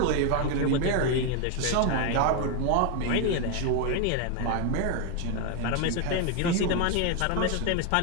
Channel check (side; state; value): both; different; correlation 0.01